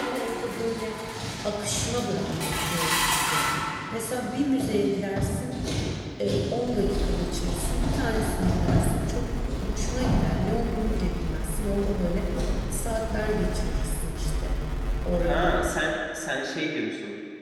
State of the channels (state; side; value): identical; both; correlation 1.00